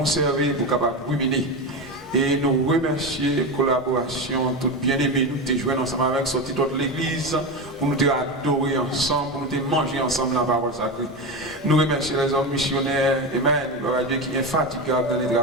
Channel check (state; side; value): normal; both; correlation 0.18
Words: pour capable ruminer. Et nous remercions la collaboration, tout bien-aimé, nous te joindre ensemble avec sorti de l'église, pour nous te adorer ensemble, pour nous te manger ensemble la parole sacrée. Nous remercions les hommes missionnaires, Amen, gloire à Dieu qui est infatigable dans le